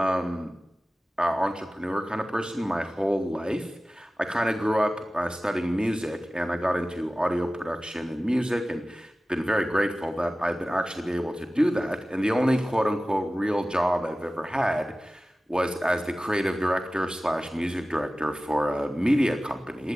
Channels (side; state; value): both; normal; correlation 0.96